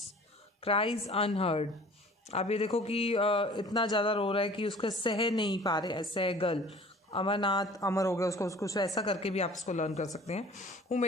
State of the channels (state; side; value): normal; both; correlation 0.48